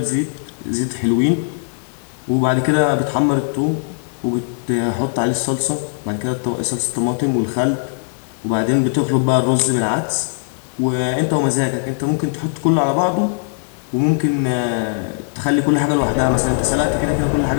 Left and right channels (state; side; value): silent; right; digital silence